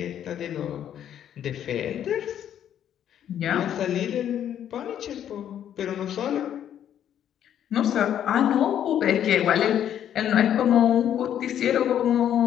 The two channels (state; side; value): quieter; right; 10.1 dB